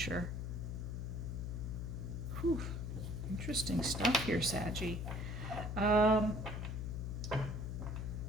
Whew. Interesting stuff here, Saggy.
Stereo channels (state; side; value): noise; left; hum, 4 dB below the sound